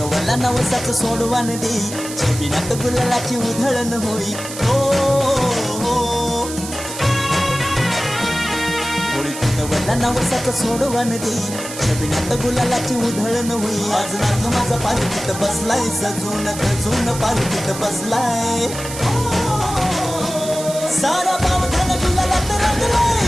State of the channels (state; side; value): noise; right; hiss, 10 dB below the sound